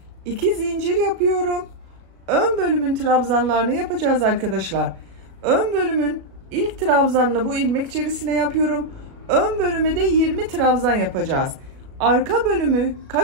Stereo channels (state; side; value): late; left; 36 ms